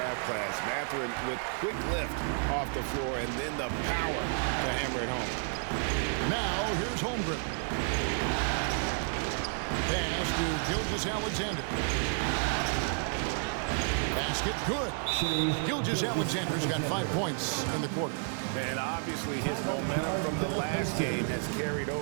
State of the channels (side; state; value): left; silent; 57 dB below the other